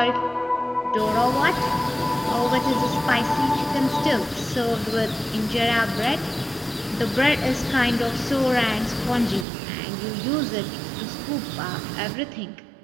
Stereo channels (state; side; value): drops out; left; at 9.5 s